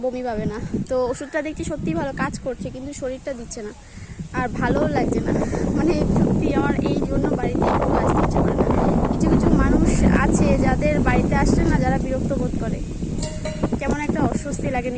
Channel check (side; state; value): both; identical; correlation 1.00